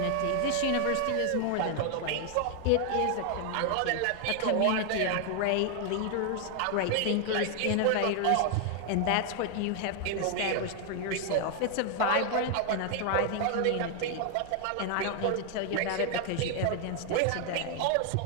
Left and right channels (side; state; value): both; different; correlation 0.00